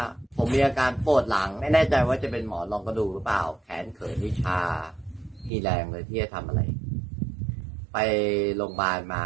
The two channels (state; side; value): drops out; left; at 5.5 s